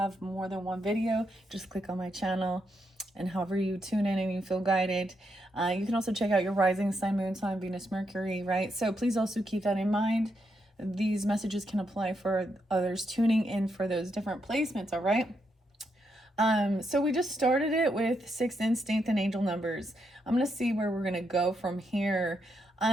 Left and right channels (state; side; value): normal; both; correlation 0.80